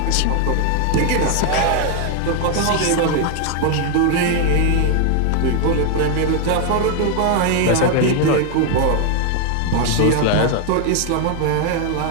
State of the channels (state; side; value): different; both; correlation 0.01